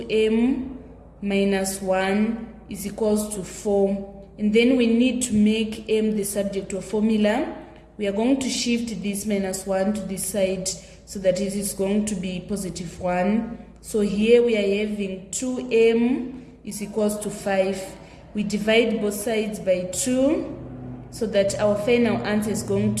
minus 1, is equals to 4. And then we need to make m the subject of formula. We are going to shift this minus 1 to this side so that it is going to be positive 1. So here we are having 2m is equals to 5. We divide both sides by 2 so that our final answer is going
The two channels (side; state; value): both; identical; correlation 1.00